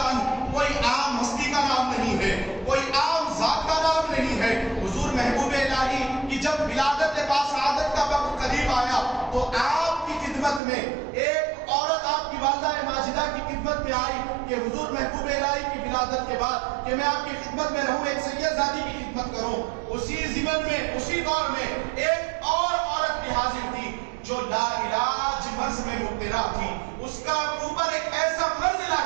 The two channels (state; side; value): drops out; left; at 10.6 s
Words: عنہ کوئی عام ہستی کا نام نہیں ہے، کوئی عام ذات کا نام نہیں ہے. حضور محبوب الہی کی جب ولادت باسعادت کا وقت قریب آیا تو آپ کی خدمت میں ایک عورت آپ کی والدہ ماجدہ کی خدمت میں آئی کہ حضور محبوب الہی کی ولادت کے بعد کہ میں آپ کی خدمت میں رہوں، ایک سید زادی کی خدمت کروں. اسی زمن میں اسی دور میں ایک اور عورت بھی حاضر تھی جو لا علاج مرض میں مبتلا تھی. اس کا اوپر ایک ایسا مرض